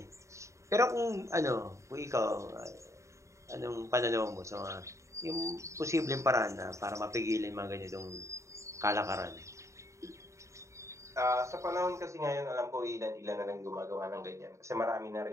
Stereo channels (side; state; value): left; late; 0.14 ms